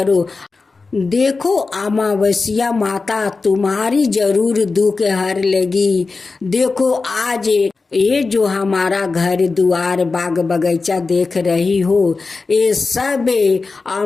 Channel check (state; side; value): quieter; right; 4.1 dB